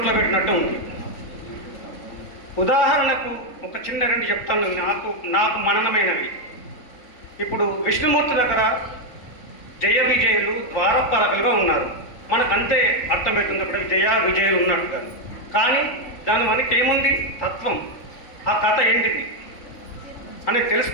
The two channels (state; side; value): late; right; 3.8 ms